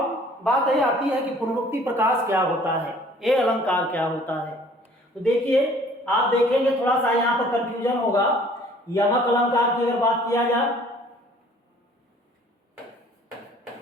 बात यह आती है कि पुनरुक्ति प्रकाश क्या होता है, ये अलंकार क्या होता है। तो देखिए, आप देखेंगे थोड़ा सा यहाँ पर कंफ्यूजन होगा। यमक अलंकार की अगर बात किया जाए,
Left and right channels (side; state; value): both; normal; correlation 0.54